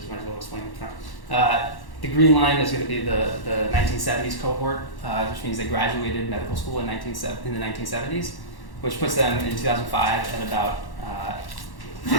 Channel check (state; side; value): late; right; 1.1 ms